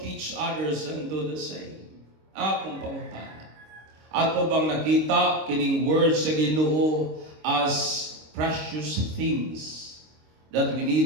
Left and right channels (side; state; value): left; late; 26 ms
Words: others and do the same. Akong pangutana, ato bang nakita kining words sa Ginoo as precious things that we